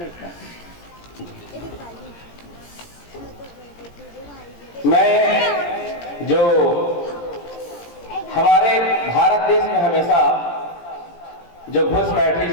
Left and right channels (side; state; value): right; late; 17 ms